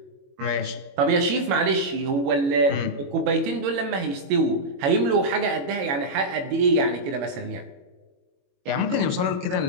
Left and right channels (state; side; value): late; left; 22 ms